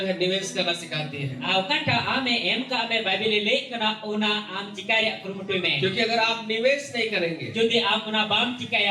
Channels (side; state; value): both; identical; correlation 1.00